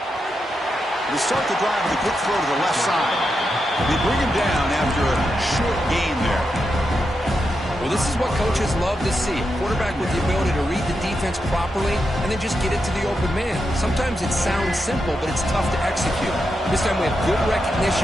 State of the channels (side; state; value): both; normal; correlation 0.86